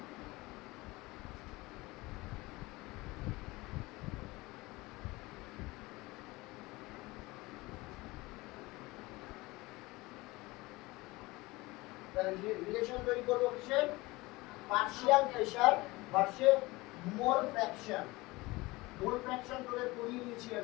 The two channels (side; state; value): right; quieter; 21.6 dB